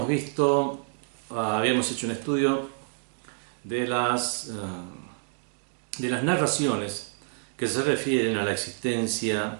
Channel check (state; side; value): silent; left; digital silence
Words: hecho un estudio de las narraciones que se refieren a la existencia